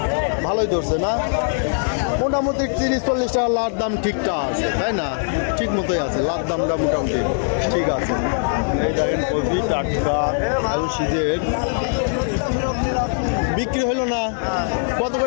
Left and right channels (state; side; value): silent; right; digital silence